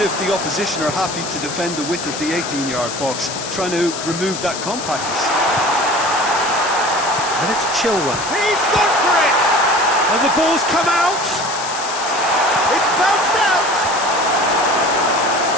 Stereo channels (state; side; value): noise; left; hiss, 8 dB below the sound